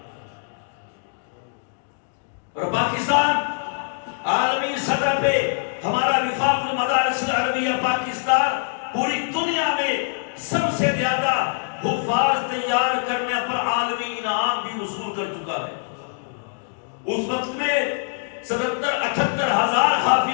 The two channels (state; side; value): silent; right; digital silence